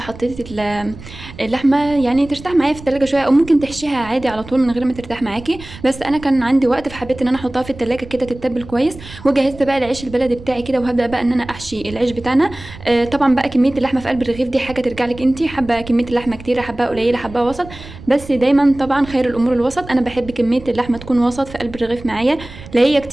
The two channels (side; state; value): right; noise; rumble, 16 dB below the sound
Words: حطيت اللحمه يعني ترتاح معايا في التلاجة شويه، او ممكن تحشيها عادي على طول من غير ما ترتاح معاكي، بس انا كان عندي وقت فحبيت ان انا احطها في التلاجة كده تتبل كويس. وجهزت بقى العيش البلدي بتاعي كده، وهبدا بقى ان انا احشي العيش بتاعنا. طبعا بقى كميه اللحمه في قلب الرغيف دي حاجه ترجع لك انت، حابه كميه اللحمه كتيره، حباها قليله، حباها وسط، بس دايما طبعا خير الامور الوسط. انا بحب كميه اللحمه تكون وسط في قلب الرغيف معايا، لا هي